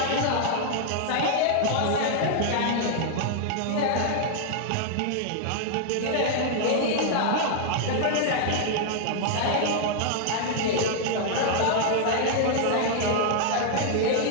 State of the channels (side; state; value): both; different; correlation -0.01